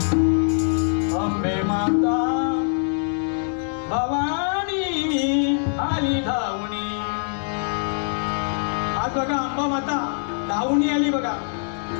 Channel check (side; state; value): right; silent; digital silence